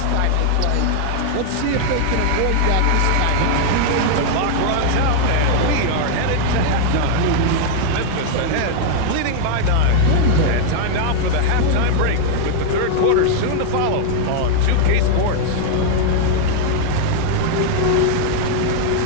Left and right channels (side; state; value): both; different; correlation 0.00